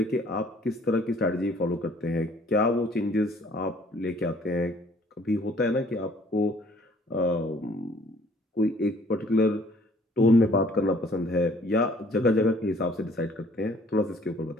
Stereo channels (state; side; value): normal; both; correlation 0.58